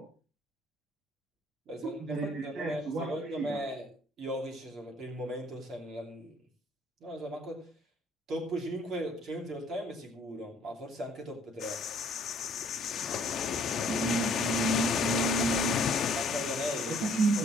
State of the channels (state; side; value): normal; both; correlation 0.60